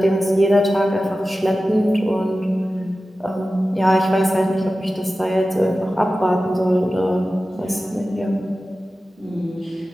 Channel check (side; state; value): both; normal; correlation 0.95